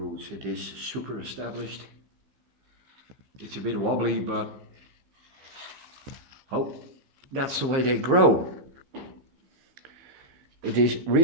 It is super established. It's a bit wobbly, but oh, that's the way they grow. It is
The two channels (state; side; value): late; left; 15 ms